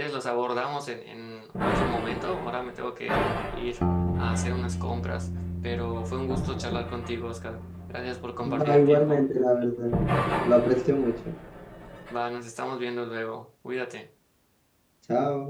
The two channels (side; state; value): both; identical; correlation 1.00